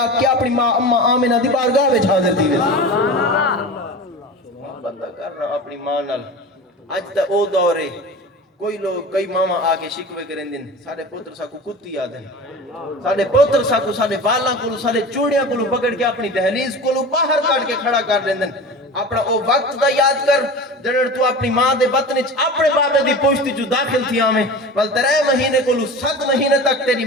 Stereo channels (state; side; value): normal; both; correlation 0.33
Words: کے اپنی ماں اماں آمنہ دی بارگاہ وچ حاضر تھی بندہ کرنا اپنی ماں نال اج تے او دور ہے کوئی لوگ کئی ماما آگے شکوے کریں دن ساڑھے پوتر ساکو کتی آدھن ساڑھے پوتر ساکو ساڑھے بالاں کولو ساڑھے چوڑیاں کولو پکڑ کے اپنی دہلیز کولو باہر کاٹ کے کھڑا کر دیں دن اپنا او وقت دا یاد کر جڑر تو اپنی ماں دے بطن وچ اپنے بابے دی پشتی جو داخل تھی آمیں ول 3 مہینے کولو 7 مہینے تک تیری